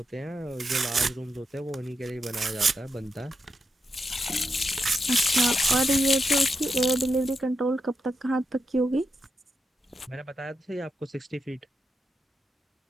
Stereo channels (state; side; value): normal; both; correlation 0.85